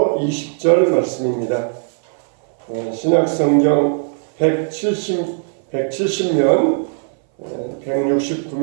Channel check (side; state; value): left; silent; 60 dB below the other